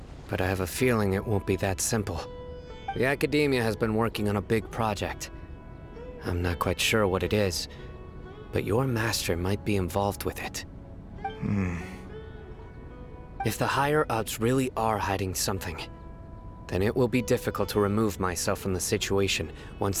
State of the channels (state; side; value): identical; both; correlation 1.00